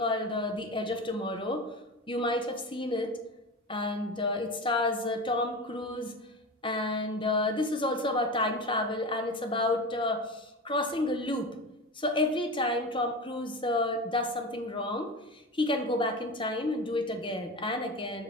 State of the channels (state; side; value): normal; both; correlation 0.27